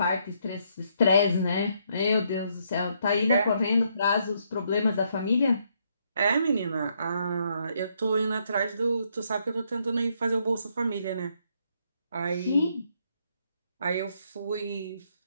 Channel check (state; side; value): inverted; both; correlation -0.73